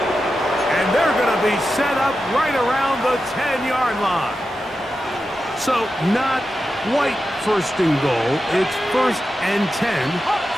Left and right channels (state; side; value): normal; both; correlation 0.90